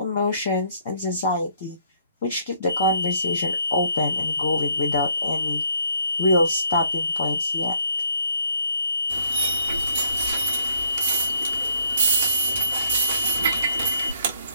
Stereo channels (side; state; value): both; inverted; correlation -0.66